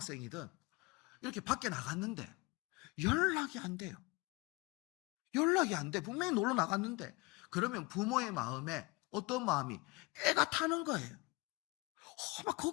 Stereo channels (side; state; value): right; quieter; 25.3 dB